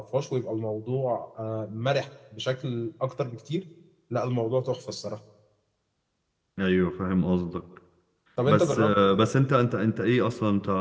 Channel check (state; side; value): identical; both; correlation 1.00